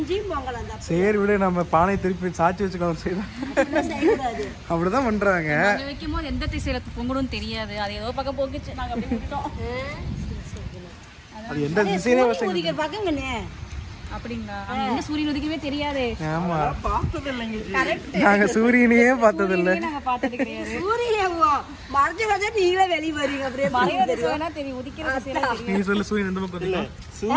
பொங்கலாம் தான். சரி விட, நம்ம பானை திருப்பி சாச்சி வச்சுக்கலாம். அப்படிதான் பண்றாங்க. வைக்கும் போது எந்த திசையில பொங்கணும்னு தெரியாது, அது ஏதோ பக்கம் போக்குச்சு, நாங்க அப்படி விட்டோம். அது எந்த திசையிலே உதிக்கிற பக்கங்கண்ணே. அப்படிங்களா? என்ன சூரியன் உதிக்கவே தெரியாது. ஆமா, பார்த்தது இல்லைங்க, நாங்க சூரியனையே பார்த்தது இல்லை. நாங்க பார்த்தது கிடையாது. சூரியன் மறைஞ்சு வந்தா நீங்களே வெளிய வரீங்க. அப்படியே மறையறது சொன்னா தெரியும், உதிக்கிற திசையில தெரியும். நீ சொல்லு, சூரியன் எந்த பக்கம் தெரியும்?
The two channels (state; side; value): identical; both; correlation 1.00